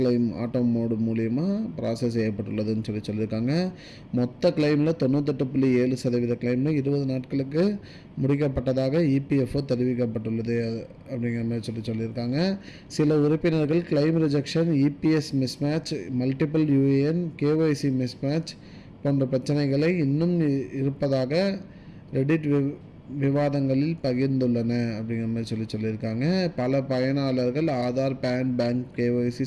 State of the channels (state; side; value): identical; both; correlation 1.00